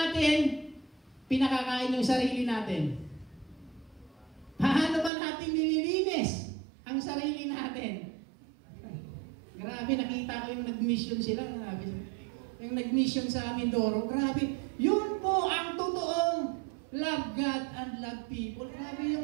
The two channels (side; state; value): left; drops out; at 5.1 s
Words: pinakakain yung sarili natin? Paano ba natin nililinis ang sarili natin? Grabe, nakita ko yung nag-mission sila. Grabe. Yung nag-mission sa Mindoro. Grabe. Yun po ang totoong love God and love people. Grabe